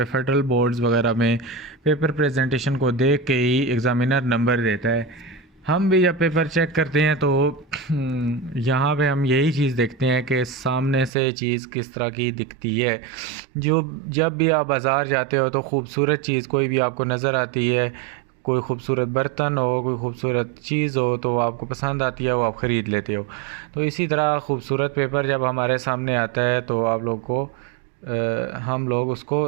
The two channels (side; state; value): left; drops out; at 11.1 s